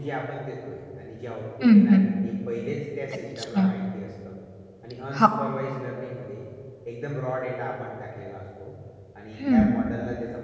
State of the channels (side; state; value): both; identical; correlation 1.00